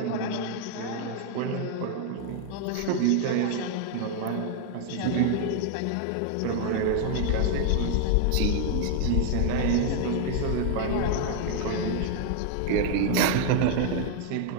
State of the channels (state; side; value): different; both; correlation 0.00